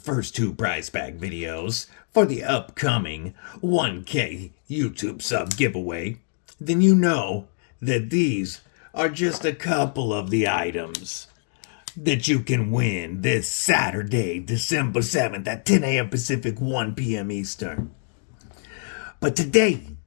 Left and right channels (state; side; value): silent; right; 62 dB below the other